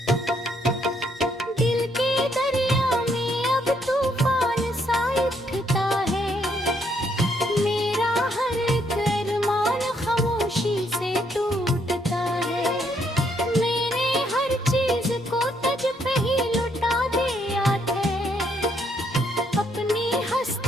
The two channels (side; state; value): both; normal; correlation 0.72